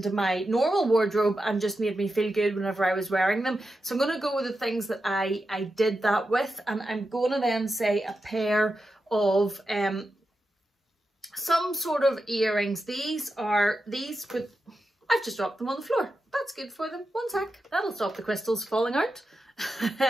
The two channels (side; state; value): both; normal; correlation 0.89